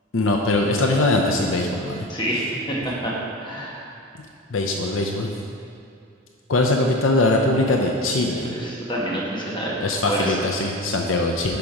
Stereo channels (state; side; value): normal; both; correlation 0.27